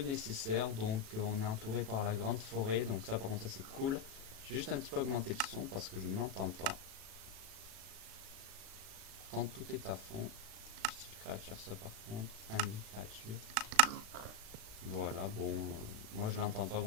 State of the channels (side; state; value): left; late; 36 ms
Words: donc on est entouré par la grande forêt, donc ça par contre ça c'est cool. J'ai juste un petit peu augmenté le son parce que je ne l'entends pas. Pourtant tout est à fond. Style créature ça par contre, friendly créature. Voilà, bon, moi je l'entends pas,